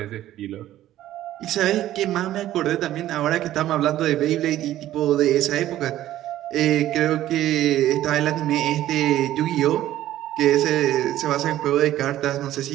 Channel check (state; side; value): quieter; left; 13.4 dB